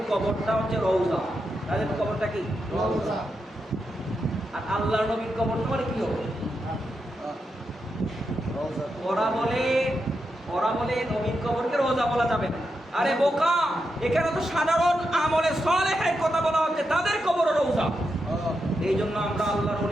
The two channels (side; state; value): both; normal; correlation 0.86